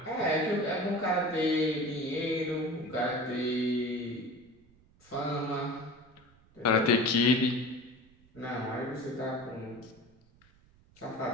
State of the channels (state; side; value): noise; right; rumble, 29 dB below the sound